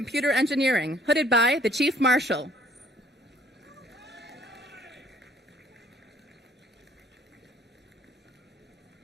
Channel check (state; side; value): normal; both; correlation 0.60